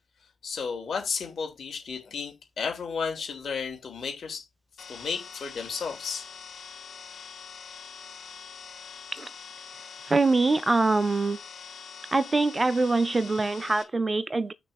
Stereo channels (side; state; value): both; normal; correlation 0.91